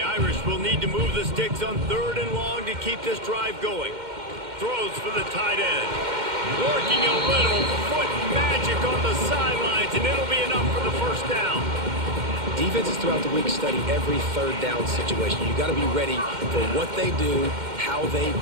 Irish will need to move the sticks on 3rd and long to keep this drive going. Throws for the tight end. Working a little foot magic on the sidelines, and it'll be enough for the 1st down. Defenses throughout the week study every 3rd down situation. You got to be ready for what they do, how they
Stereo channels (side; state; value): left; late; 2.1 ms